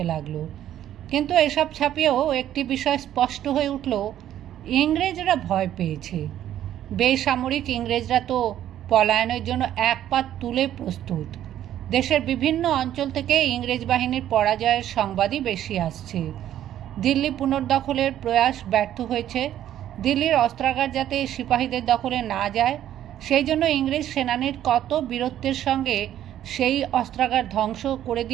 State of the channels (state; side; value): quieter; left; 11.6 dB